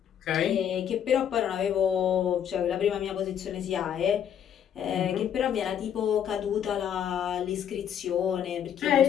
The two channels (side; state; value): right; quieter; 9.1 dB